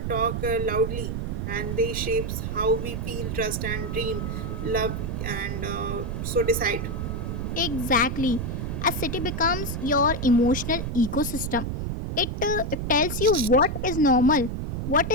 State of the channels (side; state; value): right; noise; rumble, 3 dB below the sound